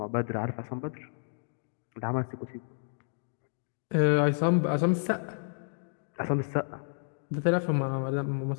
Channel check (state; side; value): silent; right; digital silence